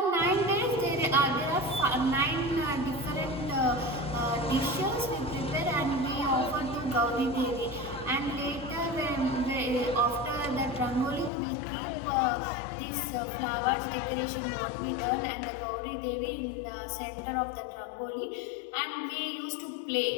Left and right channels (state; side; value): drops out; right; at 11.3 s